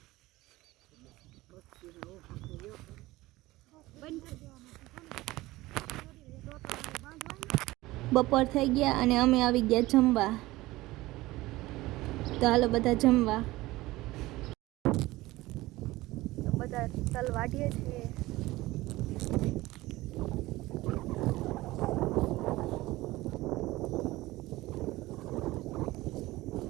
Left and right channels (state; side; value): quieter; left; 18.7 dB